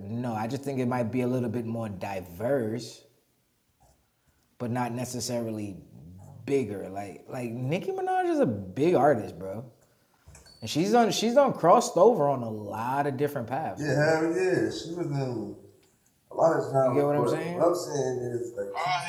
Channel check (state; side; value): identical; both; correlation 1.00